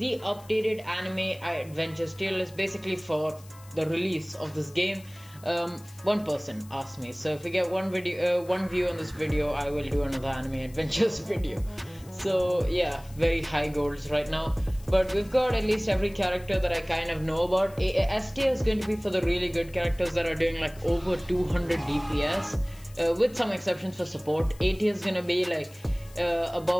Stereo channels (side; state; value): left; noise; hiss, 23 dB below the sound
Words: updated anime adventures tier list basically for the release of this game. One person asked me, so if we get one view on this video, I will do another anime adventures video. So yeah, very high goals right now, but we've got at least every character that I kind of know about. S tier is going to be for the really good characters that are doing like over 200 DPS, with some exceptions for support. A tier is going to be like